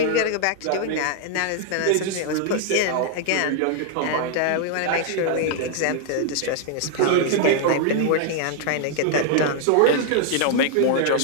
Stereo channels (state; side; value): different; both; correlation 0.00